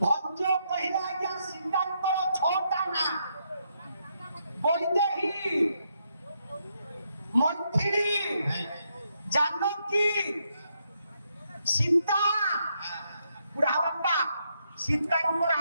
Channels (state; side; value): inverted; both; correlation -0.78